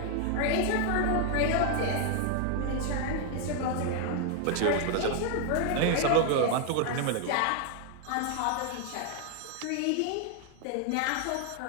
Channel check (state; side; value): different; both; correlation 0.00